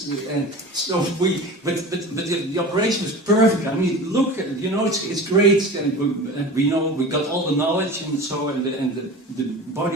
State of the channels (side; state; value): both; normal; correlation 0.35